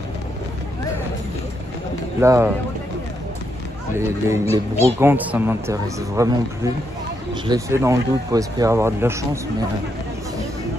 Là les brocantes ça m'intéresse vraiment plus. Je l'ai fait dans le doute pour espérer avoir de la chance, mais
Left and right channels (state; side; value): normal; both; correlation 0.80